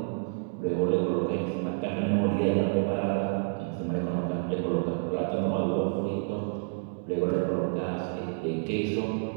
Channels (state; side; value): silent; left; digital silence